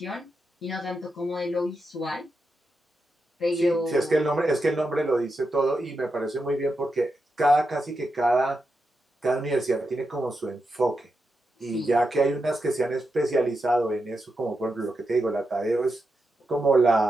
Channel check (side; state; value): both; normal; correlation 0.87